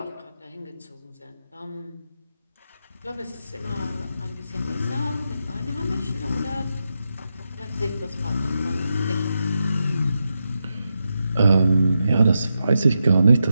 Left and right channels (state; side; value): inverted; both; correlation -0.87